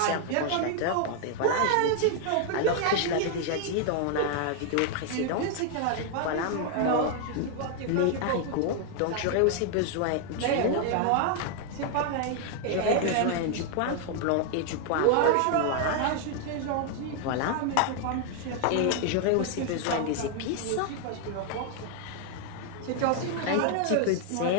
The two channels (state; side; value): different; both; correlation 0.00